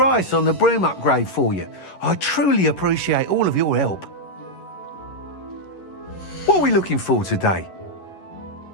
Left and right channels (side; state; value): right; late; 11 ms